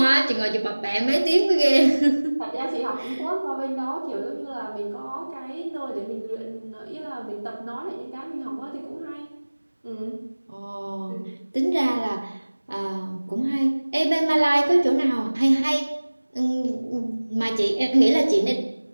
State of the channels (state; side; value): inverted; both; correlation -1.00